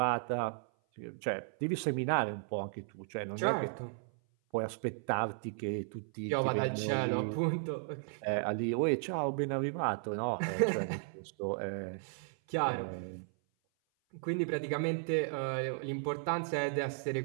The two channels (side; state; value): left; silent; 54 dB below the other